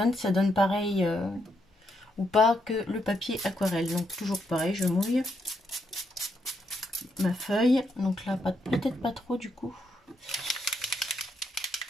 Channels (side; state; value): both; normal; correlation 0.78